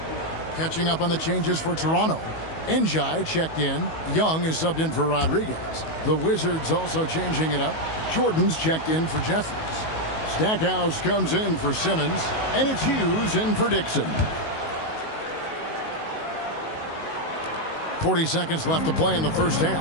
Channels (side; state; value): right; late; 19 ms